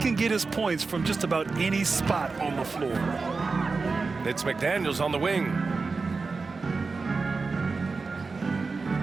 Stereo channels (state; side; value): quieter; left; 4.3 dB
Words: get his points from just about any spot on the floor. It's McDaniels on the wing.